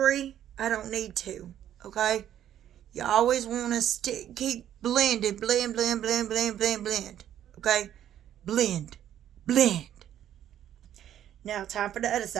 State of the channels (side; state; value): left; quieter; 10.9 dB